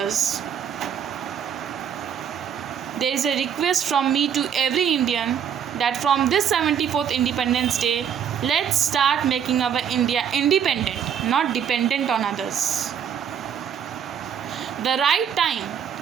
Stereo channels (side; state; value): left; quieter; 8.3 dB